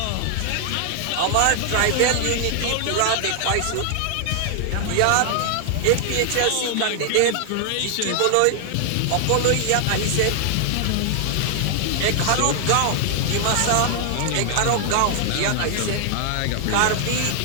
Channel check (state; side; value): different; both; correlation 0.00